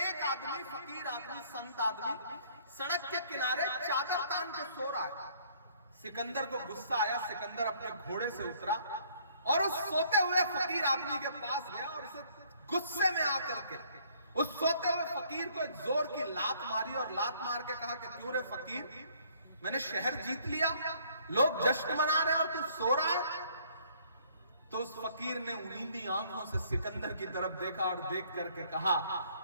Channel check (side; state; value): both; inverted; correlation -0.61